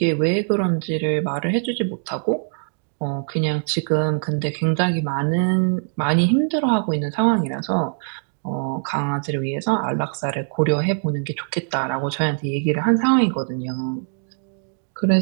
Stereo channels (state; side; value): silent; left; digital silence